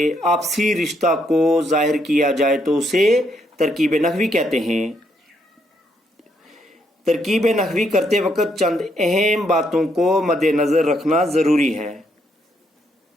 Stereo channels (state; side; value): normal; both; correlation 0.74